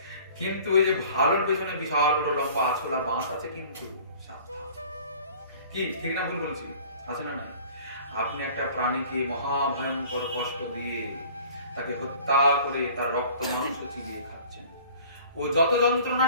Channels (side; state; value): both; inverted; correlation -0.48